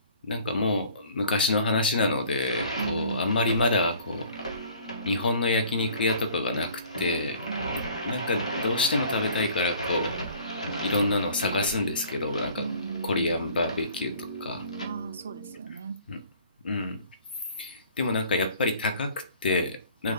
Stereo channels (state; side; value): inverted; both; correlation -0.52